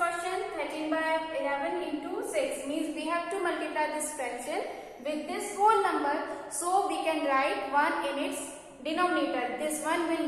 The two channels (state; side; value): identical; both; correlation 1.00